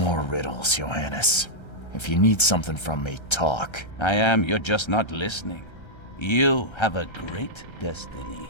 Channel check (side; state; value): right; late; 1.3 ms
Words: riddles, Johannes. If you need something from me, talk. I am, you're just not listening. You have a great destiny.